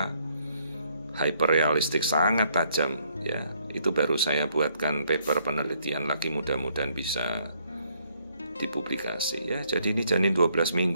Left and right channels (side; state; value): both; inverted; correlation -0.70